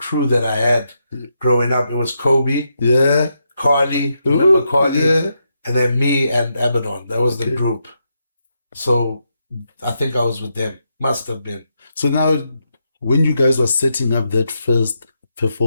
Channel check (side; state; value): both; inverted; correlation -0.82